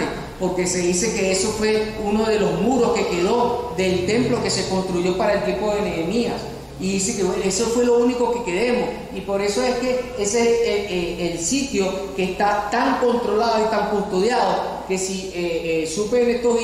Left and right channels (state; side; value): identical; both; correlation 1.00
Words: porque se dice que eso fue uno de los muros que quedó del templo que se construyó para el tiempo de Nehemías. Y dice que bueno, eso fue lo único que quedemos. Y por eso es que ese es el sitio que está tan controlado y tan custodiado, que si supe en estos